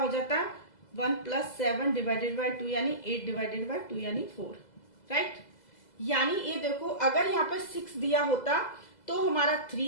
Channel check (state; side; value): late; right; 2.0 ms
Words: जाता 1 प्लस 7 डिवाइडेड बाय 2, यानी 8 डिवाइडेड बाय 2 यानी 4, राइट। यानी ये देखो अगर यहाँ पे 6 दिया होता तो हमारा